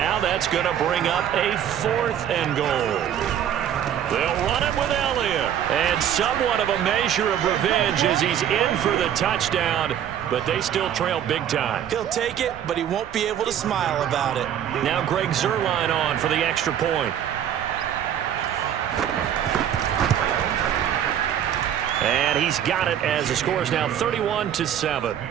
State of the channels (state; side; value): quieter; left; 9.8 dB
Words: that's going to bring up a 4th and goal. They'll run it with Elliott, and somewhat of a measure of revenge as he's in for the touchdown, but they still trail big time. He'll take it, but he won't be able to smile about it. Now Greg Zuerlein on for the extra point. And he's got it as the score is now 31-7.